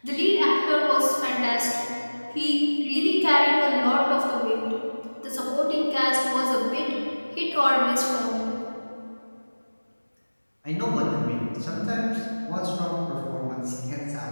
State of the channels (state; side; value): inverted; both; correlation -1.00